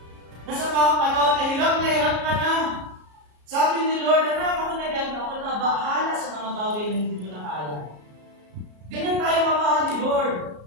Nasa mga panahon na hirap ka na. Sabi ni Lord, anak, ako na bahala sa mga bagay na hindi mo na kaya. Ganyan tayo mamahal ni Lord.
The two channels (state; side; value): late; left; 33 ms